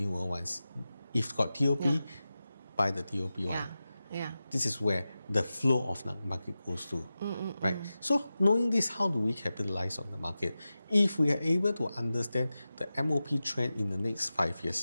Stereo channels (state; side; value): inverted; both; correlation -0.94